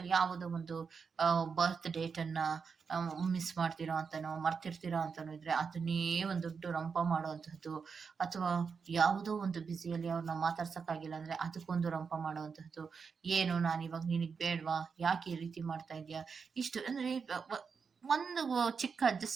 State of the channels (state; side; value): quieter; left; 5.7 dB